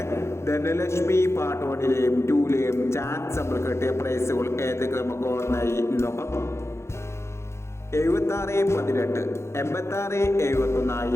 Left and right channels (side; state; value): right; late; 0.13 ms